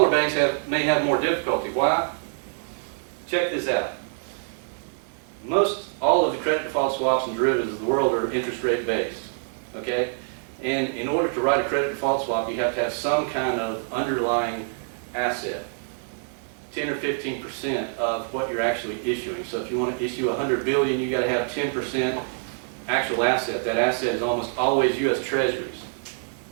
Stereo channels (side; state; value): left; silent; digital silence